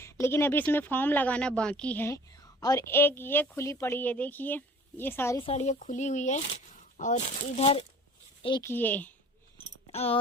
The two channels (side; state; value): both; normal; correlation 0.48